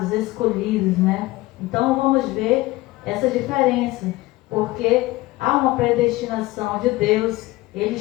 escolhidos, né? Então vamos ver essa diferença, porque há uma predestinação de Deus, Ele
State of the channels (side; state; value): right; quieter; 19.5 dB